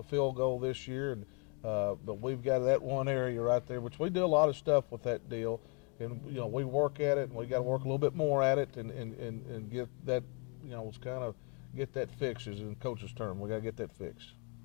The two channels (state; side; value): quieter; right; 36.1 dB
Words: field goal this year, and but we've got that one area right there, which we do a lot of stuff with that deal. And, you know, we work at it, and we got to work a little bit more at it and get that, you know, it's kind of get that fixed, is in coach's term. We got to get that fixed.